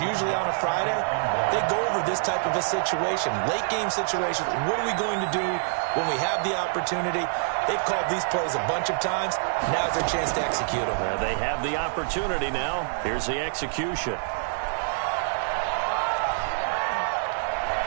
on a Friday. They go over this type of a situation, late game situation. What are we going to do when we have the opportunity? They've called these plays a bunch of times. Now's their chance to execute them. Well, they have the opportunity now. Here's the execution.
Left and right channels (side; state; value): left; silent; digital silence